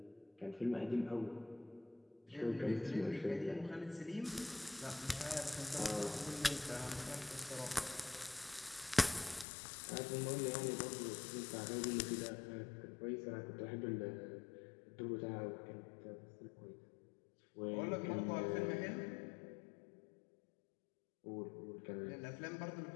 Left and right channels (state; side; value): drops out; right; at 9.5 s